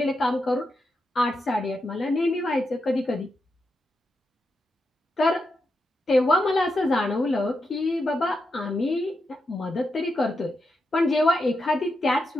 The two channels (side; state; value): both; normal; correlation 0.86